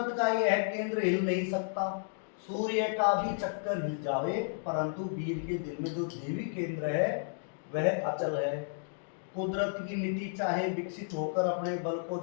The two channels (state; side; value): silent; right; digital silence